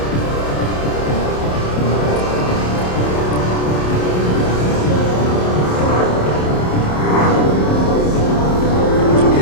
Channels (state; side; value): late; right; 27 ms